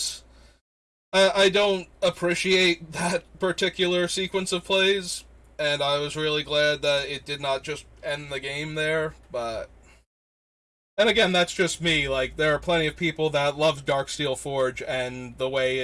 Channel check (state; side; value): identical; both; correlation 1.00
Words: I don't appreciate that particular sequence of plays, and I was really glad that it did not just end the game there, but... And again, that's just me. Like, there are plenty of people that love Darksteel Forge and the way